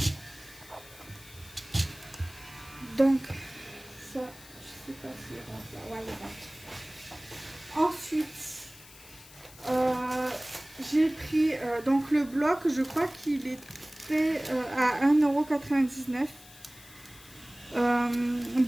Donc ça, je sais pas s'il rentre là. Ouais, il rentre. Ensuite, j'ai pris donc le bloc, je crois qu'il était à 1,99 €.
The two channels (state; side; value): noise; left; hiss, 20 dB below the sound